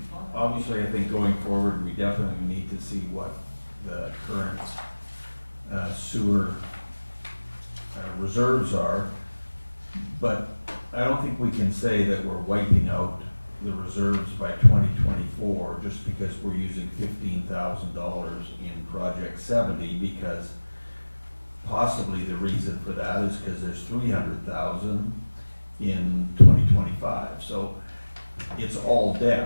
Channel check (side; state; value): both; inverted; correlation -1.00